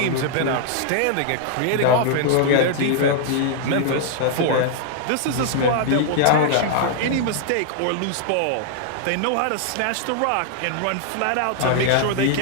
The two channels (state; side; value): different; both; correlation 0.00